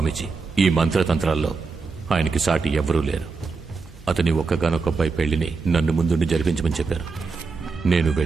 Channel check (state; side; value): quieter; left; 4.5 dB